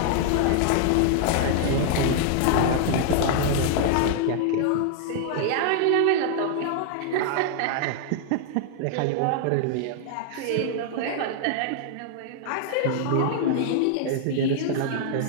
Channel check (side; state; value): both; different; correlation -0.01